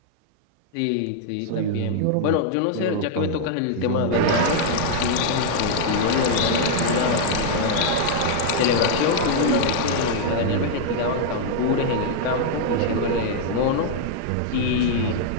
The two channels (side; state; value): both; different; correlation -0.01